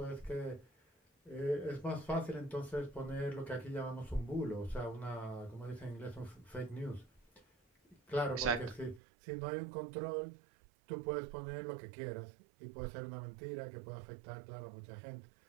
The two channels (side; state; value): left; drops out; at 9.0 s